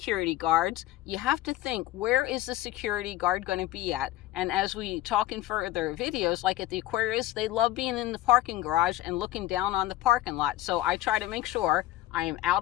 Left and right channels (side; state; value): right; quieter; 15.0 dB